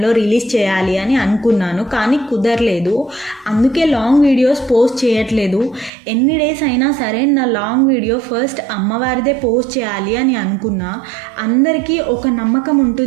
రిలీజ్ చేయాలి అని అనుకున్నాను, కానీ కుదరలేదు. అందుకే లాంగ్ వీడియోస్ పోస్ట్ చేయట్లేదు. ఎన్ని డేస్ అయినా సరే నా లాంగ్ వీడియో ఫస్ట్ అమ్మవారిదే పోస్ట్ చేయాలి అని అనుకున్నా. అందరికీ ఒక నమ్మకం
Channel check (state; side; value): drops out; left; at 5.9 s